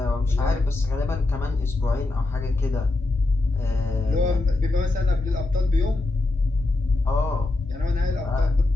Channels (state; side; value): quieter; right; 3.1 dB